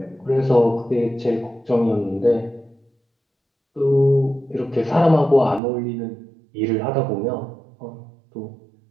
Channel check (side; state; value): left; drops out; at 5.6 s